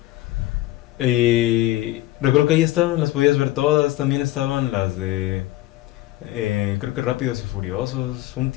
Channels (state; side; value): quieter; right; 16.5 dB